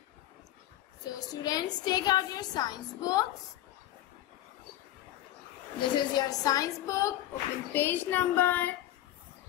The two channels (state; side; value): quieter; right; 13.5 dB